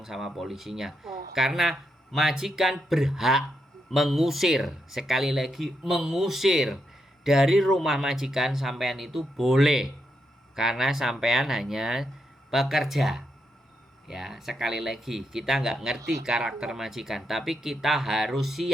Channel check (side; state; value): both; normal; correlation 0.82